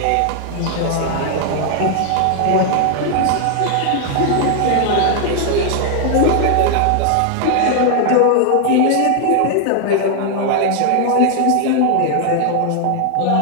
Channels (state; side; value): different; both; correlation 0.00